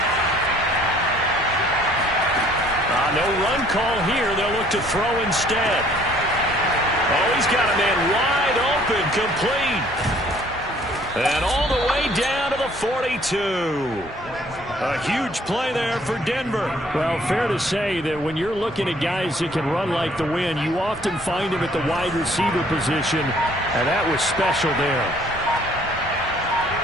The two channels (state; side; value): normal; both; correlation 0.59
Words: No run call here. They'll look to throw instead. Oh, he's got a man wide open, complete. And all the way down to the 42. A huge play there for Denver. Well, fair to say that when you're looking at guys that can run like the wind, you often find him at the wide receiver position, and that was special there.